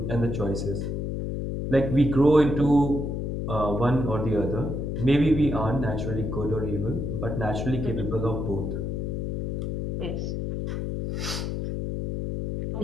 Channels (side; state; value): left; noise; hum, 2 dB below the sound